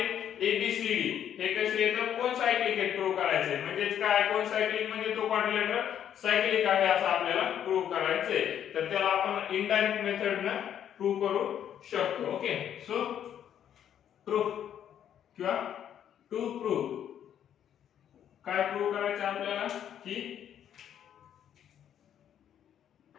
ए बी सी डी हे कसे येतात, कोन सायक्लिक आहे प्रूव्ह करायचे. म्हणजे काय, कोन सायक्लिक म्हणजे तो क्वाड्रिलॅटरल सायक्लिक आहे असं आपल्याला प्रूव्ह करायचंय. तर त्याला आपण इनडायरेक्ट मेथडने प्रूव्ह करू शकतो. ओके, सो प्रूफ किंवा टू प्रूव्ह काय प्रूव्ह करायचं आपल्याला, की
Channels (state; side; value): quieter; right; 9.7 dB